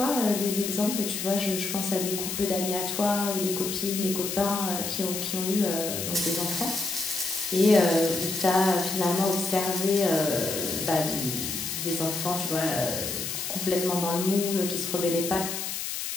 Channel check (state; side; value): noise; left; hiss, 4 dB below the sound